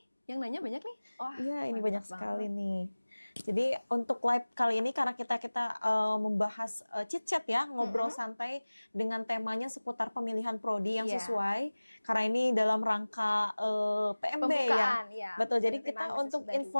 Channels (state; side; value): inverted; both; correlation -1.00